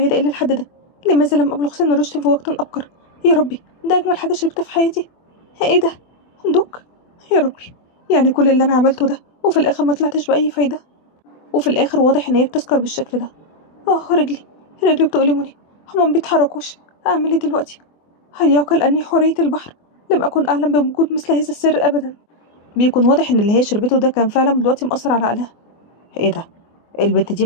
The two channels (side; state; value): right; late; 24 ms